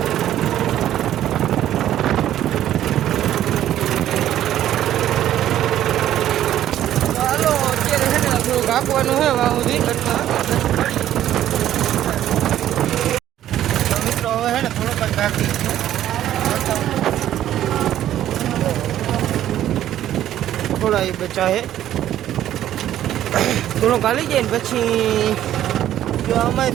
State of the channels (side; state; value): left; quieter; 12.1 dB